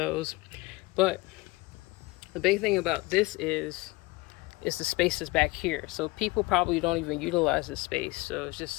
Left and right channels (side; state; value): right; quieter; 22.3 dB